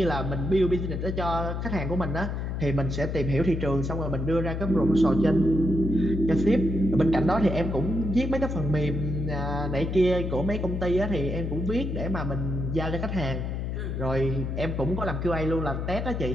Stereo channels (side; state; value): left; noise; hum, 3 dB below the sound